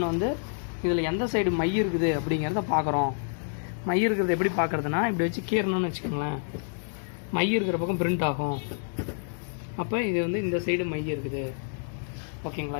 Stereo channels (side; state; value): right; silent; digital silence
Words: வந்து இதில் எந்த சைடு மை இருக்குது அப்படிங்கிறத பார்க்குறோம். மை இருக்கிறது எப்படி பார்க்குறதுனா, இப்படி வச்சு கீறணும்னு வச்சுக்கோங்களேன், மை இருக்கிற பக்கம் பிரிண்ட் ஆகும். அப்போ இது வந்து இந்த சைடு மை இருக்குது, ஓகேங்களா?